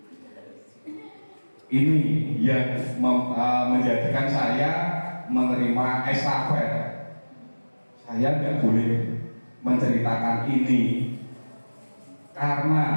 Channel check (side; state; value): both; inverted; correlation -1.00